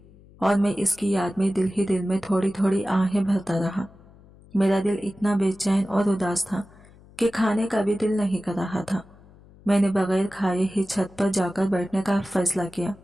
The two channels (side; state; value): left; noise; hum, 24 dB below the sound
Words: और मैं इसकी याद में दिल ही दिल में थोड़ी थोड़ी आहें भरता रहा। मेरा दिल इतना बेचैन और उदास था कि खाने का भी दिल नहीं कर रहा था। मैंने बगैर खाए ही छत पर जाकर बैठने का फैसला किया।